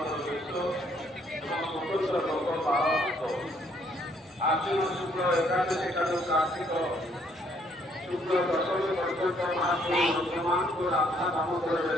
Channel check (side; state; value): both; normal; correlation 0.67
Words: ବେଶ ଏବଂ ସ୍ୱତନ୍ତ୍ର ଭୋଗ ପାଳନ ହେବ। ଆଶ୍ୱିନ ଶୁକ୍ଳ ଏକାଦଶୀ ଠାରୁ କାର୍ତ୍ତିକ ଶୁକ୍ଳ ଦଶମୀ ପର୍ଯ୍ୟନ୍ତ ମହାପ୍ରଭୁ ଭକ୍ତମାନଙ୍କୁ ରାଧା ଦାମୋଦର